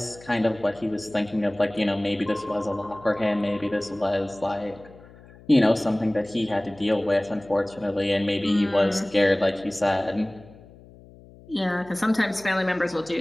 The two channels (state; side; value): noise; left; hum, 22 dB below the sound